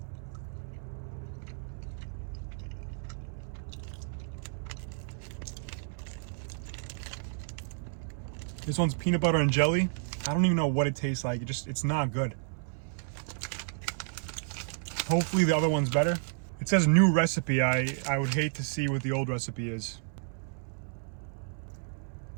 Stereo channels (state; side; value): silent; left; 57 dB below the other